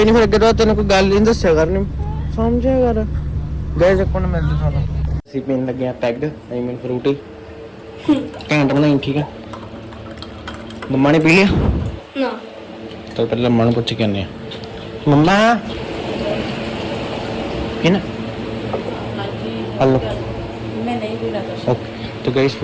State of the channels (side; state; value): both; identical; correlation 1.00